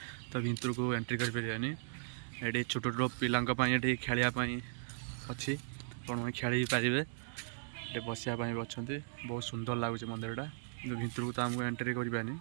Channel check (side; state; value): left; silent; digital silence